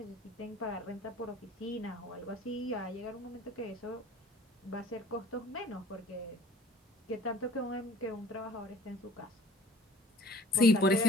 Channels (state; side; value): normal; both; correlation 0.48